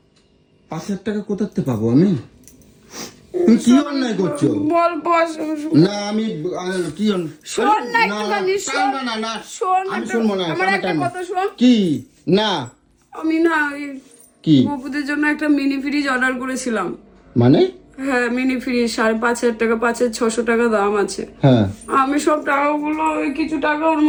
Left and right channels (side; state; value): both; identical; correlation 1.00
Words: 5,000 টাকা কোথাতে পাবো আমি? তুমি কি অন্যায় করছো? বল বস। না আমি কি শোন না একটুখানি, শোন। না শোন, আমি শুনবো না। আমার একটা কথা শোন। কি? না আমি না কি? গপুদের জন্য একটা মিনি ফ্রিজ অর্ডার করেছিলাম। মানে হ্যাঁ মিনি ফ্রিজ 5,500 টাকা, 5,600 টাকা দাম আছে। হ্যাঁ, আমি সব টাকাগুলো ওই কিছু টাকা ওর